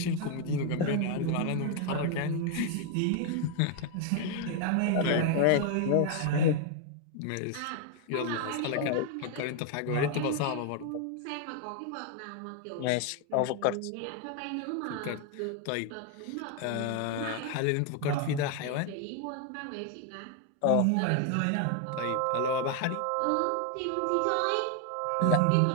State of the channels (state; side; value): different; both; correlation 0.00